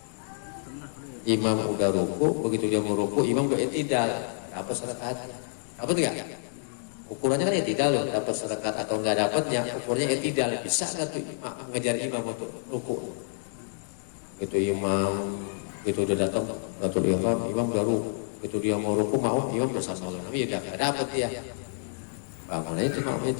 udah ruku. Begitu dia mau ruku, imam udah i'tidal. Dapat 1 rakaat. Dapat enggak? Ukurannya kan i'tidal loh, dapat 1 rakaat atau enggak dapat, yang ukurnya i'tidal. Bisa enggak tuh mengejar imam untuk ruku? Begitu udah datang takbiratul ihram, imam udah ruku. Begitu dia mau ruku, imam udah sama dengan Nabi, udah enggak dapat dia. Bagaimana itu namanya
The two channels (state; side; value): silent; right; digital silence